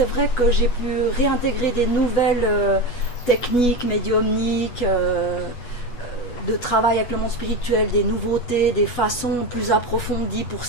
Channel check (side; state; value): right; late; 8.2 ms